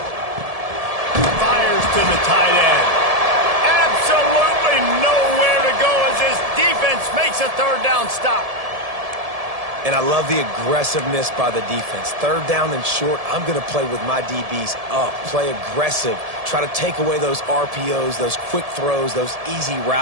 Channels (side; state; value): left; late; 1.7 ms